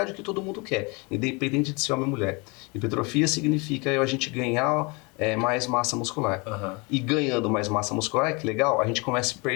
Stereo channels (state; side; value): quieter; right; 28.8 dB